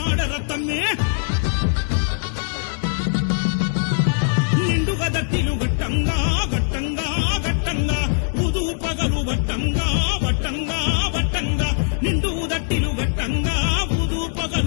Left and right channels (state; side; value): silent; right; digital silence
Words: తమ్మి నిండుగా దట్టిలు గట్టంగా గట్టంగా గట్టంగా ఉదు పగలు వట్టంగా వట్టంగా వట్టంగా నిండు దట్టిలు గట్టంగా ఉదు